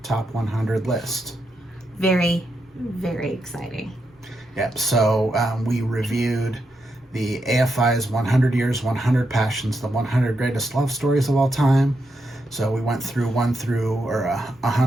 top 100 list. Very, very exciting. Yep. So we reviewed the AFI's 100 Years, 100 Passions, the 100 Greatest Love Stories of All Time. So we went through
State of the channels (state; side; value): normal; both; correlation 0.83